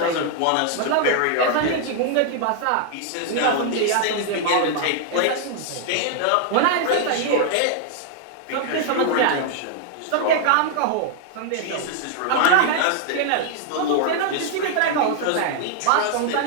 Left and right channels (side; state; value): both; different; correlation 0.00